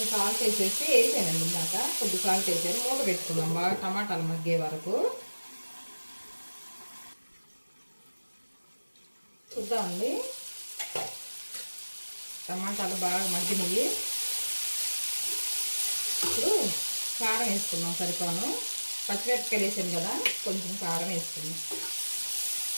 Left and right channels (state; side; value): inverted; both; correlation -1.00